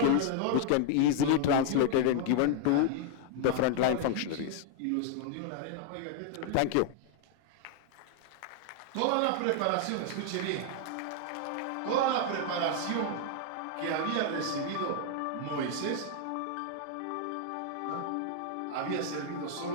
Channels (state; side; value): different; both; correlation 0.00